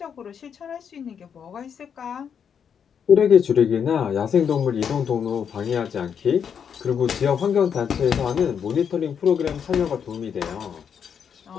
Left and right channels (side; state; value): right; quieter; 7.5 dB